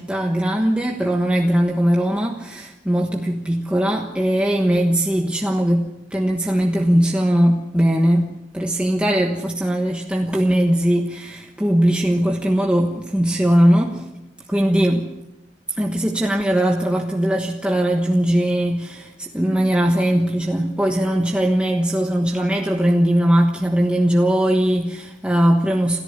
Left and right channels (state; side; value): normal; both; correlation 0.94